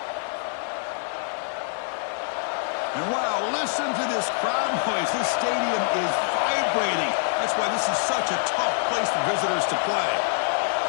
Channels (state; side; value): silent; right; digital silence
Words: And wow, listen to this crowd noise. This stadium is vibrating. That's why this is such a tough place for visitors to play.